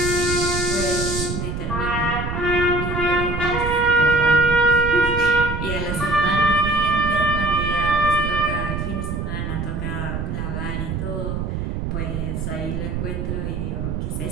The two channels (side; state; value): right; noise; rumble, 3 dB below the sound